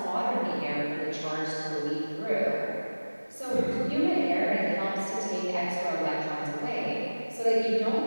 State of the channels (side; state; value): both; inverted; correlation -1.00